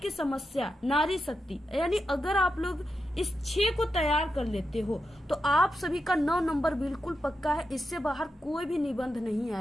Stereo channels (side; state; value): both; normal; correlation 0.88